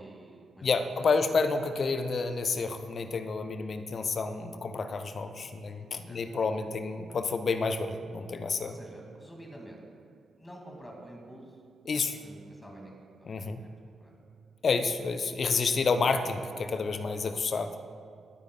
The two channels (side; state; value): right; quieter; 4.0 dB